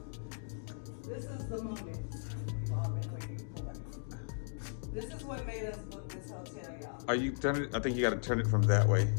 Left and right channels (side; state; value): right; silent; digital silence